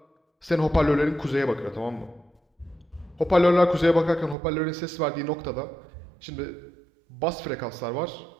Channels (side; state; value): left; drops out; at 4.4 s